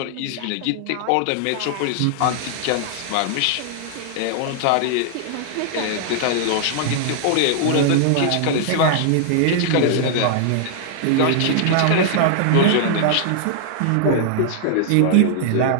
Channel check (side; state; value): both; different; correlation -0.01